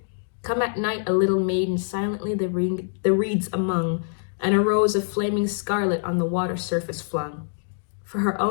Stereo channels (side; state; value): right; silent; digital silence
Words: Come at night a little maiden silently the reeds among, and a rose of flaming scarlet on the water surface flung. For her